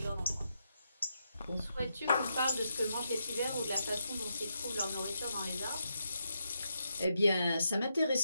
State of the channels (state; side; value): inverted; both; correlation -0.82